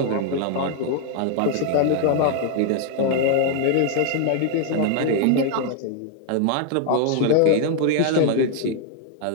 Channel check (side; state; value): both; different; correlation 0.00